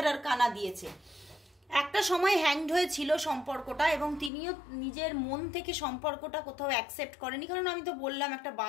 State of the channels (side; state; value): right; drops out; at 4.3 s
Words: আরকানা দিয়েছে। একটা সময় হ্যাংড হয়েছিল সম্পর্কটা, এবং তিনিও নিজের মন থেকে সম্পর্কটা কোথাও অ্যাকসেপ্ট করেনি, কারণ আমি তো বললাম একটা